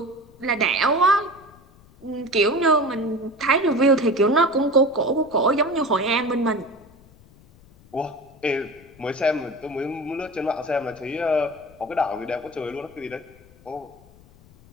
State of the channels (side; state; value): left; noise; rumble, 26 dB below the sound